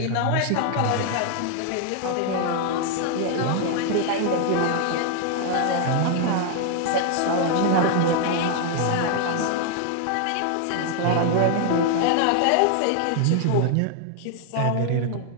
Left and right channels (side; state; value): both; different; correlation 0.00